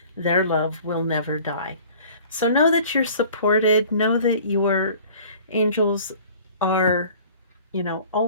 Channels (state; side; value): inverted; both; correlation -0.48